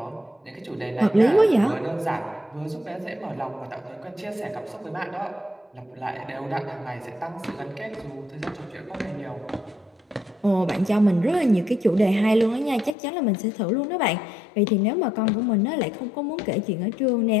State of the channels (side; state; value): right; drops out; at 13.0 s